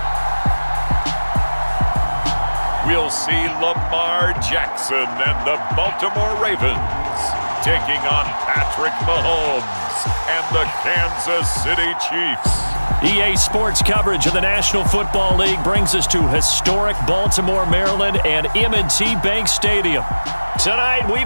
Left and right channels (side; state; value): both; inverted; correlation -1.00